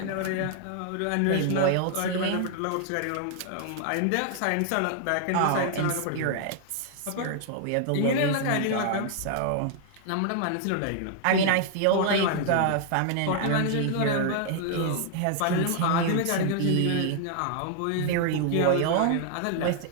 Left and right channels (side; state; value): both; different; correlation 0.00